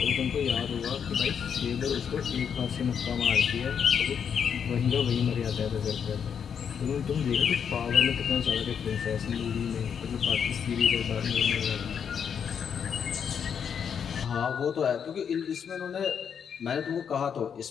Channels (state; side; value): quieter; right; 7.5 dB